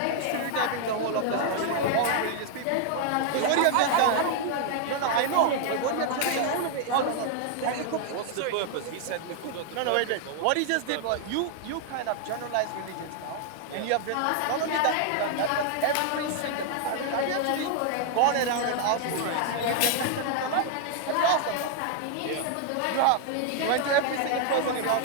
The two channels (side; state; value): both; different; correlation 0.00